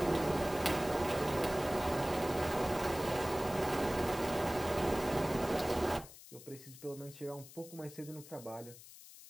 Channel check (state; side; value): noise; left; hiss, 18 dB below the sound